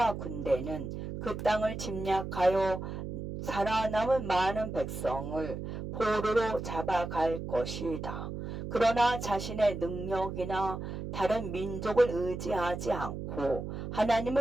군대는 그 땅을 침략하여 살아남은 많은 백성을 포로로 잡아갈 것이다. 그러나 자신의 능력이나 다른 민족을 의지하지 않고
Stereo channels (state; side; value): noise; right; hum, 6 dB below the sound